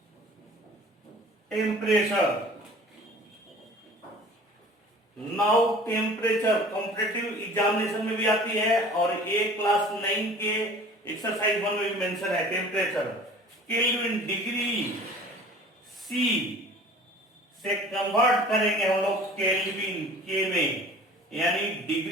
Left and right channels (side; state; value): both; normal; correlation 0.45